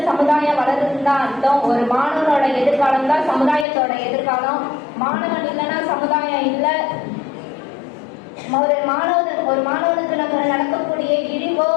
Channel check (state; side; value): drops out; right; at 3.7 s